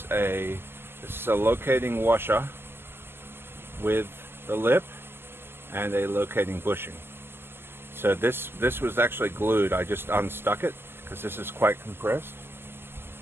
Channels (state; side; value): late; left; 0.11 ms